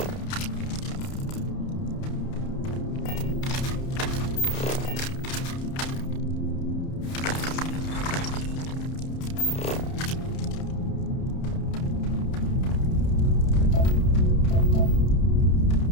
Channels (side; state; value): right; late; 31 ms